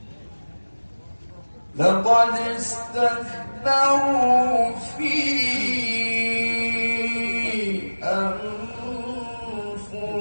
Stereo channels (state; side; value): inverted; both; correlation -1.00